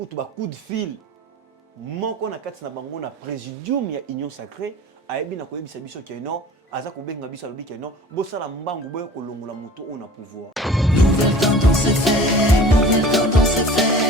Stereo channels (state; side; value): normal; both; correlation 0.43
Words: coup de fil. Moko na kati na bango na présidium ya Union Sacrée ayebi na koyebisa biso que non aza kobenga biso alobi que non bosala mbangu boyo kolongola moto on a pouvoir. Nouvelle tendance est faite, nouvelle tendance est